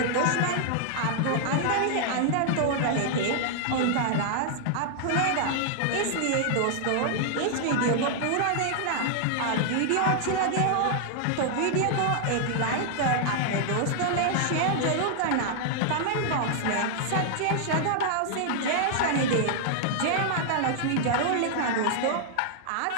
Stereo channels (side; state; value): both; different; correlation -0.01